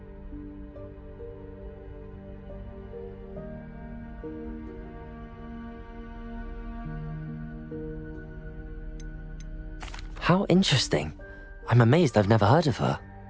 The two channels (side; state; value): both; identical; correlation 1.00